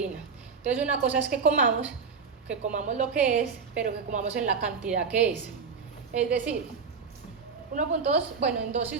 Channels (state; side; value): quieter; left; 5.5 dB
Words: Entonces una cosa es que comamos lo que es, pero que comamos en la cantidad que es. Es decir, 1.2, bueno, en